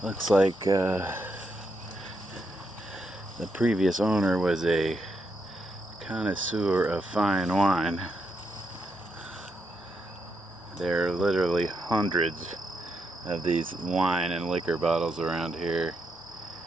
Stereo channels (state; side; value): normal; both; correlation 0.81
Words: Looks like the previous owner was a connoisseur of fine wine. There are literally hundreds of these wine and liquor bottles around here.